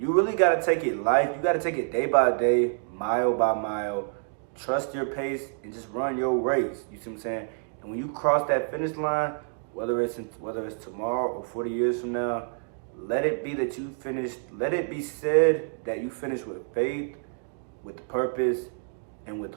really got to take it life. You got to take it day by day, mile by mile. Trust your pace and just run your race. You see what I'm saying? And when you cross that finish line, whether it's tomorrow or 40 years from now, let it be that you finished. Let it be said that you finished with faith, with purpose, and with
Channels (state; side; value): silent; left; 60 dB below the other